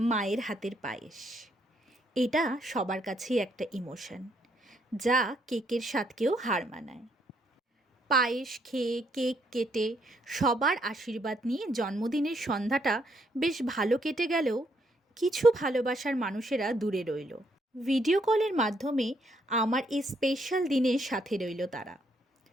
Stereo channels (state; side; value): normal; both; correlation 0.73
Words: মায়ের হাতের পায়েস। এটা সবার কাছেই একটা ইমোশন, যা কেকের স্বাদকেও হার মানায়। পায়েস খেয়ে কেক কেটে সবার আশীর্বাদ নিয়ে জন্মদিনের সন্ধ্যাটা বেশ ভালো কেটে গেলেও কিছু ভালোবাসার মানুষেরা দূরে রইল। ভিডিও কলের মাধ্যমে আমার এই স্পেশাল দিনের সাথে রইল তারা।